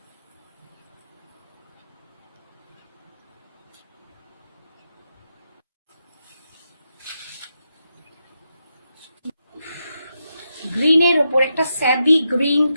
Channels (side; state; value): both; inverted; correlation -0.85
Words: গ্রিনের ওপর একটা স্যাবি গ্রিন